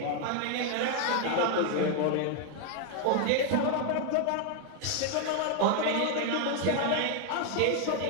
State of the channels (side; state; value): both; different; correlation 0.01